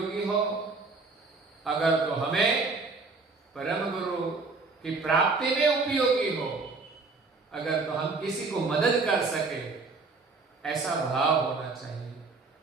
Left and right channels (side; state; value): left; quieter; 4.0 dB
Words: हो। अगर तो हमें परम गुरु की प्राप्ति में उपयोगी हो, अगर तो हम किसी को मदद कर सके, ऐसा भाव होना चाहिए।